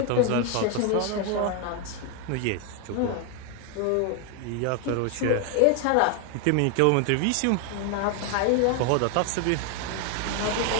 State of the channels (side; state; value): both; different; correlation 0.01